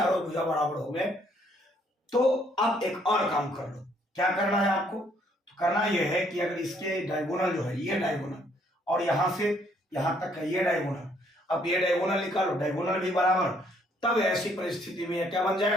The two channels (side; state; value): both; normal; correlation 0.67